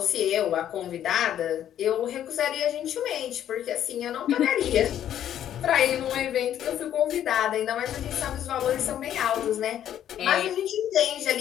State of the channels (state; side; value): quieter; right; 10.8 dB